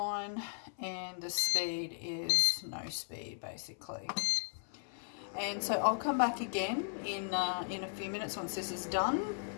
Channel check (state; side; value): silent; right; 53 dB below the other